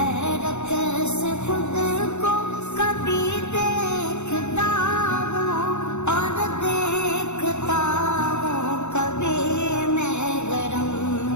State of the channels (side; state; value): right; late; 0.82 ms